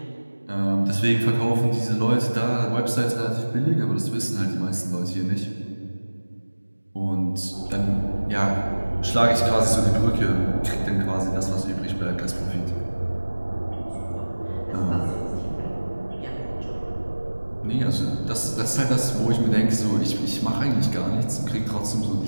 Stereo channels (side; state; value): both; inverted; correlation -1.00